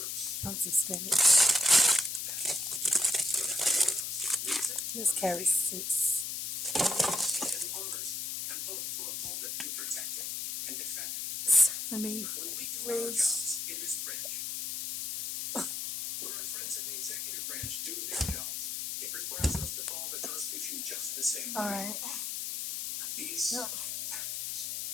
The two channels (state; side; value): noise; left; hiss, 3 dB below the sound